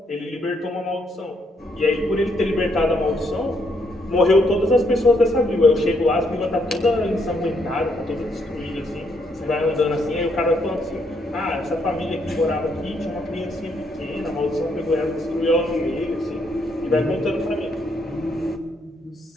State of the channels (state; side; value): normal; both; correlation 0.74